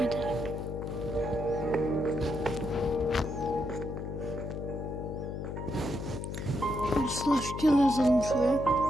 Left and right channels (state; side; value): noise; left; hum, 5 dB below the sound